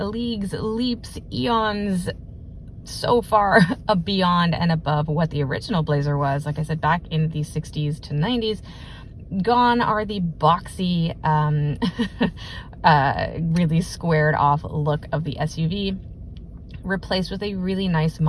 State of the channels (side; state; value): both; identical; correlation 1.00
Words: leaps, eons so far beyond and above what the original Blazer was. Like I said, back in the 60s to 90s. Gone are the boxy, really squared off look of the SUV, replaced with a really nice